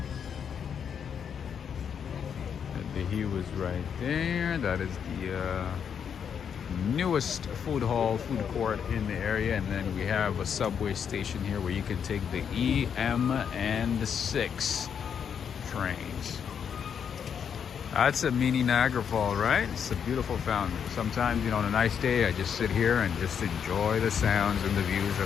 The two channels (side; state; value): right; quieter; 7.6 dB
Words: The hue is right there. That is the newest food hall, food court in the area. And then we have a subway station here where you can take the E, M, and the 6 trains. That's a mini Niagara Fall, right? It's a beautiful fountain. Sometimes, you know, on a nice day, I just sit here and just enjoy the sounds and the views